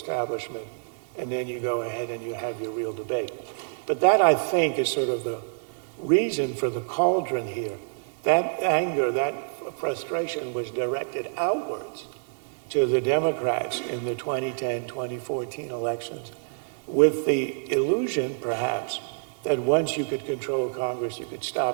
and then you go ahead and you have your real debate. But that, I think, is sort of the reason for the cauldron here. That anger, that frustration was directed outwards to the Democrats in the 2010, 2014 elections, with the illusion, perhaps, that once you could control Congress, you could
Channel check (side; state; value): left; silent; digital silence